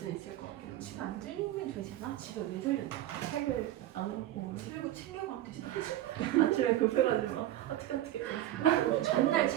있을 것 같아요 집에 안 들리면 되잖아. 집에 왜 들렸나? 책을 안 갖고 오면 들고 챙겨가면 되잖아. 아침에 급해가지고 어떻게 전날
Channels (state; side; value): quieter; left; 13.8 dB